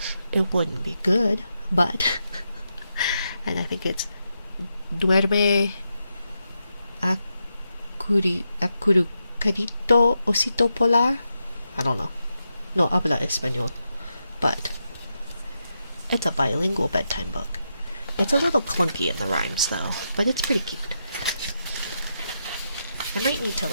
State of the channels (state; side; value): inverted; both; correlation -0.85